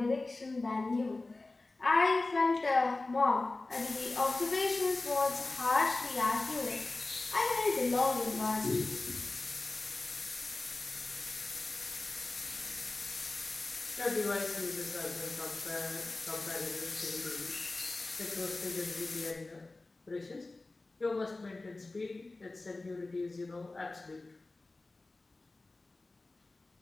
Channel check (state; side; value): quieter; right; 3.2 dB